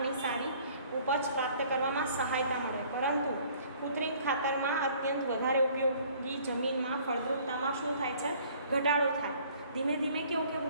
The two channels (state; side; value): inverted; both; correlation -0.55